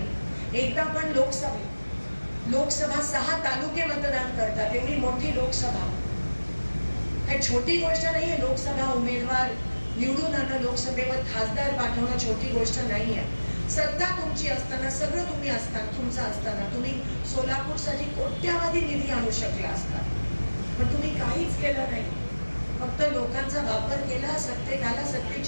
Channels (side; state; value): both; inverted; correlation -1.00